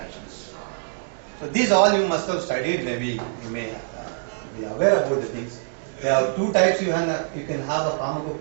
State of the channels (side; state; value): left; silent; digital silence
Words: So these all you must have studied. Maybe you may be aware about the things. There are two types. You can have a